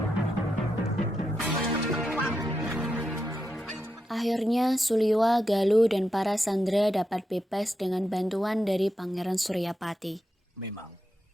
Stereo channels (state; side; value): normal; both; correlation 0.86